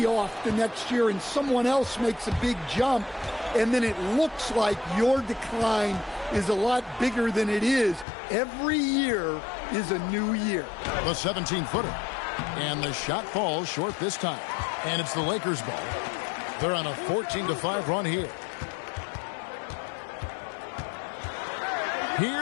off the next year and someone else makes a big jump, and then it looks like your decline is a lot bigger than it is. Every year is a new year. The 17-footer. And the shot falls short this time. And it's the Lakers' ball. They're on a 14-5 run here.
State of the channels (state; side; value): drops out; right; at 8.1 s